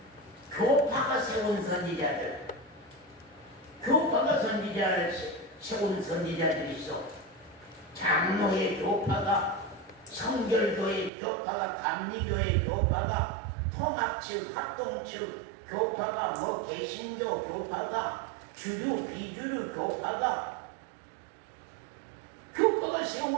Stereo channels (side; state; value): left; drops out; at 11.1 s